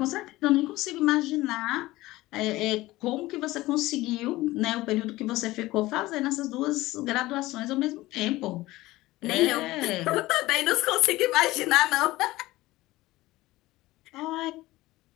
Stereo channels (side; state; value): right; quieter; 18.4 dB